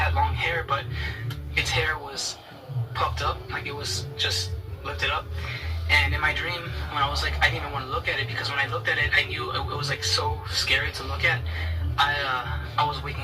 long hair, but its hair was puffed up, like it was just lifted up. And in my dream, when I was like, I didn't even want to look at it, because when I looked at it, I knew it was like so scary to look at. I was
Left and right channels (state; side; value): identical; both; correlation 1.00